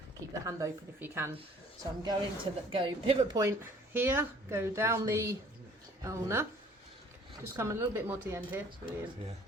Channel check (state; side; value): normal; both; correlation 0.54